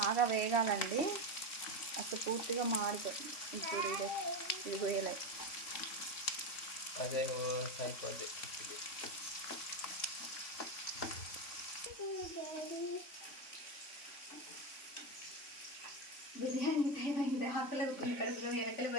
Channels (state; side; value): late; right; 3.5 ms